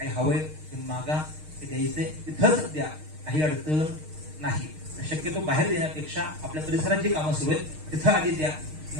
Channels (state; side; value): late; left; 6.5 ms